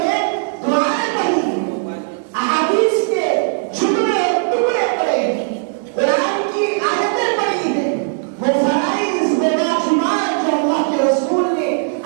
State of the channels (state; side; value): silent; left; digital silence